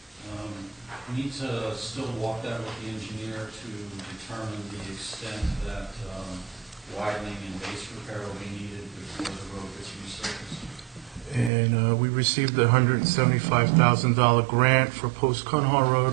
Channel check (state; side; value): drops out; left; at 11.5 s